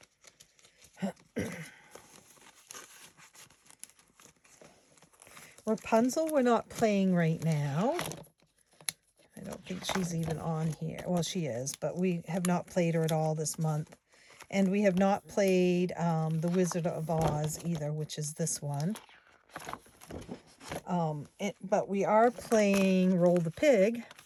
Rapunzel, we're not playing right now. I don't think she's even on here. Well, she is, but we have not played her at all this month. And we have not played The Wizard of Oz either, which is this one. But we are playing Roll the Pig.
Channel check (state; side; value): identical; both; correlation 1.00